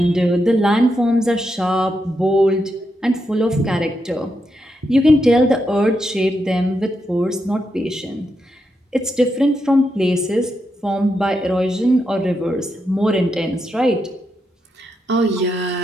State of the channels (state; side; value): normal; both; correlation 0.83